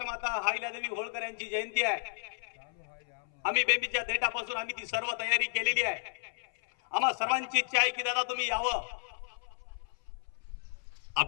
अहिल्यादेवी होळकर यांची जयंती आहे. आम्ही बेंबीच्या देठापासून आम्ही ती सर्व तयारी केलेली आहे. आम्हा सर्वांची इच्छा आहे की दादा तुम्ही यावं.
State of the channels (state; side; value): silent; right; 56 dB below the other